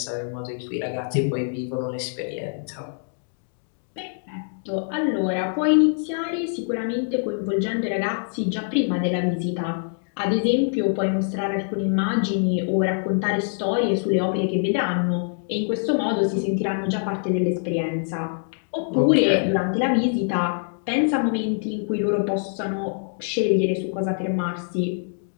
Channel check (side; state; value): right; silent; digital silence